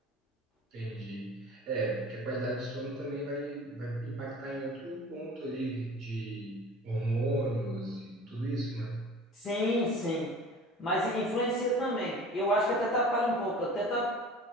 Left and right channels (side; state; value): both; normal; correlation 0.42